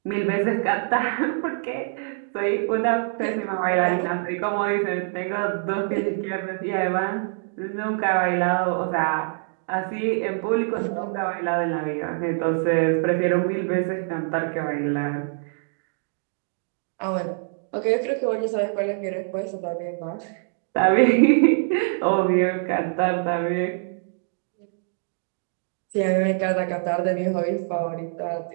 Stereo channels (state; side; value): silent; left; 62 dB below the other